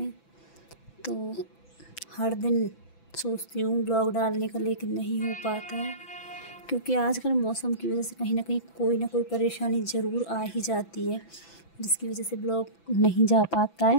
तो हर दिन सोचती हूँ ब्लॉग डालने का, लेकिन नहीं हो पाता है क्योंकि आजकल मौसम की वजह से कहीं ना कहीं कोई ना कोई परेशानी ज़रूर आ ही जाती है, जिसकी वजह से ब्लॉग नहीं जा पाता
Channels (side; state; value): right; late; 6.0 ms